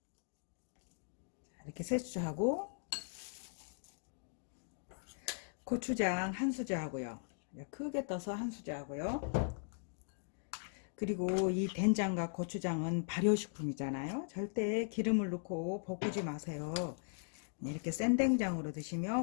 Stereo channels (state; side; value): silent; right; digital silence